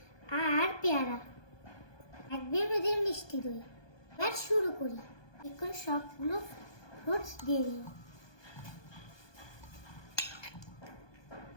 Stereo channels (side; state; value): right; late; 1.2 ms